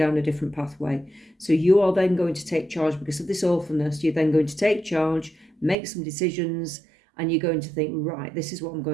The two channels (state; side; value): drops out; left; at 5.8 s